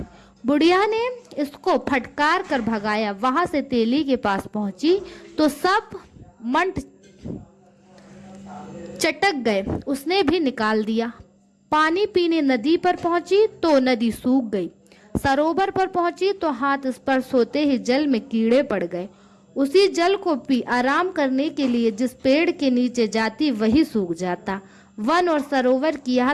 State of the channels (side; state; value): both; identical; correlation 1.00